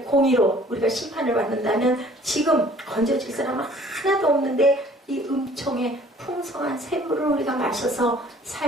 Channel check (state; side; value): normal; both; correlation 0.54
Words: 공의로 우리가 심판을 받는다면 지금 건져질 사람은 하나도 없는데 이 은총의 풍성한 샘물을 우리가 마셔서